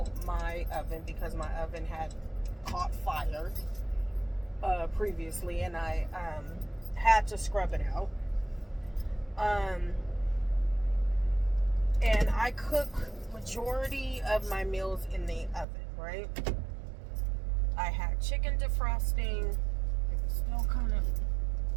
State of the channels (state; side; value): drops out; left; at 15.7 s